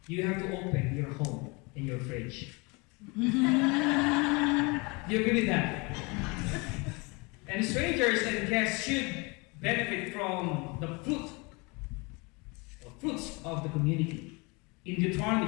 you have to open your home and your fridge. Do you agree with that? And strangers and guests should benefit from the fruits of the community. In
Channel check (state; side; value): quieter; right; 28.3 dB